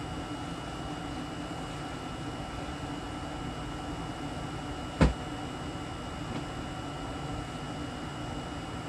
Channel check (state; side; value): identical; both; correlation 1.00